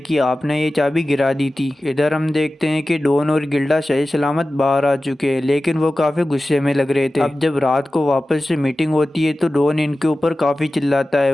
आपने ये चाबी गिरा दी थी। इधर हम देखते हैं कि डॉन और गिल्डा सही सलामत बाहर आ चुके हैं, लेकिन वो काफी गुस्से में लग रहे थे। अब जब रात को वापस से मीटिंग होती है तो डॉन इनके ऊपर काफी चिल्लाता है।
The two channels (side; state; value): both; normal; correlation 0.95